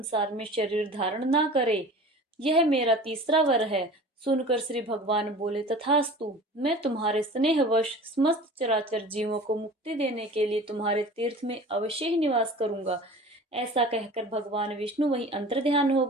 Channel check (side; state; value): both; normal; correlation 0.40